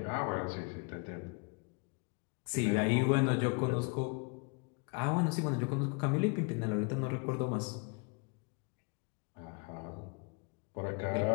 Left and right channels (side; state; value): right; quieter; 33.7 dB